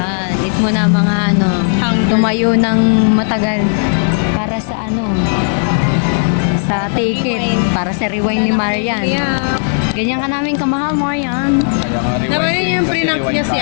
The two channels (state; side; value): silent; right; digital silence